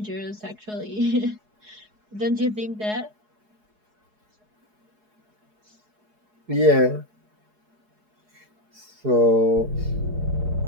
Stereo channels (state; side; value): late; left; 4.7 ms